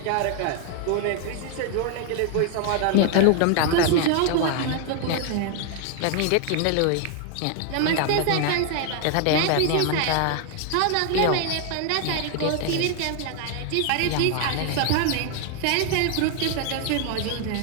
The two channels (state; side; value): different; both; correlation 0.00